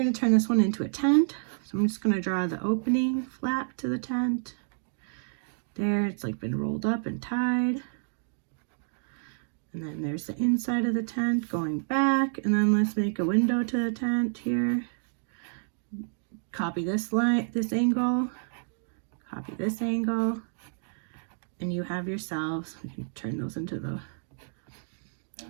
to turn this one into a tent. So I'm just going to draw the opening flap to the tent. There, it's like been rolled up and tied. And then there's the inside of the tent going back, and then let's make a window to the tent here. Copy this line, this angle, copy this angle, and you have yourselves, you can turn those into the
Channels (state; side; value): silent; left; digital silence